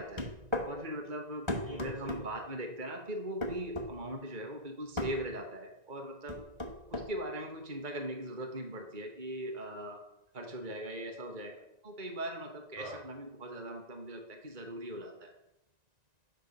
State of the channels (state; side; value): late; left; 1.9 ms